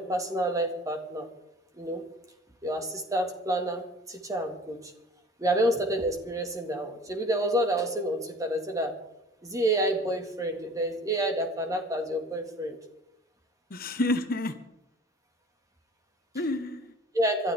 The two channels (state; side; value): normal; both; correlation 0.46